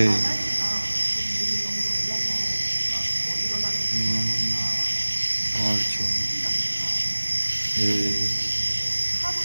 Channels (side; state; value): both; inverted; correlation -1.00